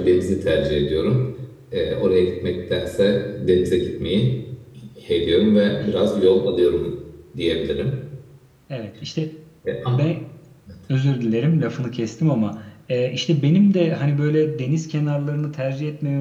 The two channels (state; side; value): identical; both; correlation 1.00